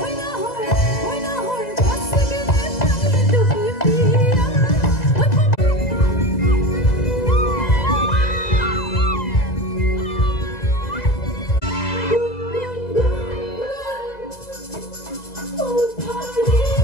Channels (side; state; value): right; late; 2.0 ms